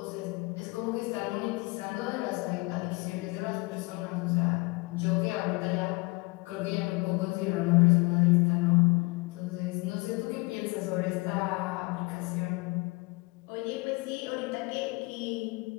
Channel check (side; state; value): right; quieter; 26.2 dB